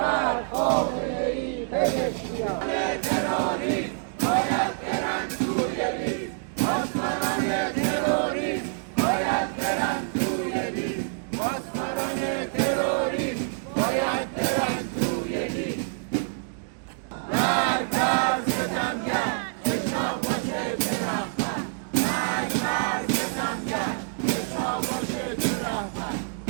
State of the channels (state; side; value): silent; left; digital silence